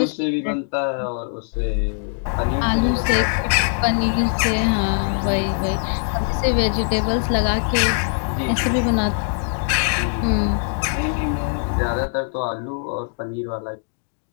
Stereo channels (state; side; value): silent; right; digital silence